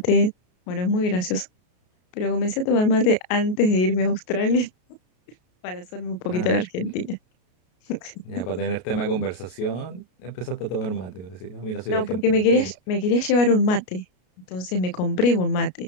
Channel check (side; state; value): right; late; 33 ms